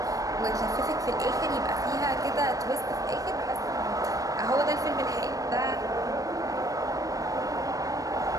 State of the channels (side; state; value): left; late; 0.17 ms